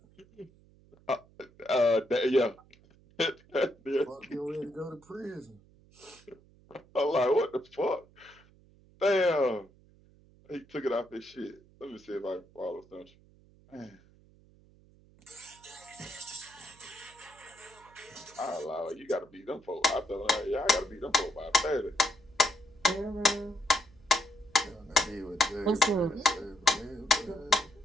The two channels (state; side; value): noise; right; hum, 27 dB below the sound